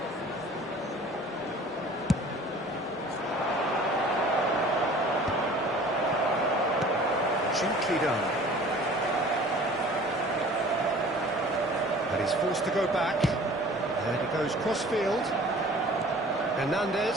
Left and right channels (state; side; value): normal; both; correlation 0.47